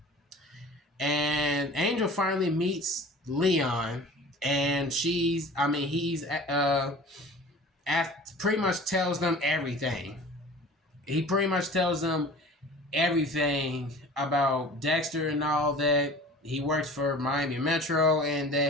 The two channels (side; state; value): both; normal; correlation 0.42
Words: And Angel finally meets Leon, and he's pretty much tells them everything. He pretty much tells them everything about Dexter and all that. He works for Miami Metro and